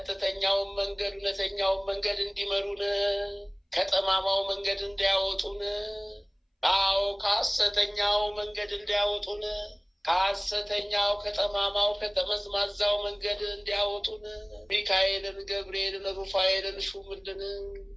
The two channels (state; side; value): identical; both; correlation 1.00